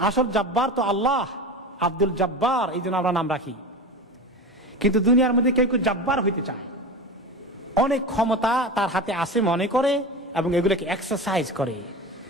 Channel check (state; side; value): normal; both; correlation 0.27